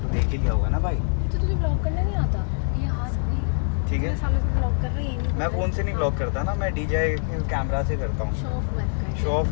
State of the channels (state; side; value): silent; right; 58 dB below the other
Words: देख ही लिया होगा ना भाई। तो तुझे ब्लॉग करना नहीं आता? ये हाथ भी ठीक है, सालों से ब्लॉग कर रही है। मैं फ़ोन से नहीं ब्लॉग करता ना, मैं DJI कैमरा से करता हूँ। शो ऑफ मत कर। शो ऑफ